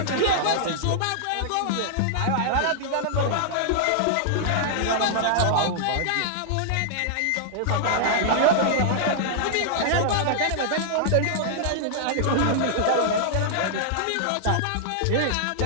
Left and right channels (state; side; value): different; both; correlation -0.01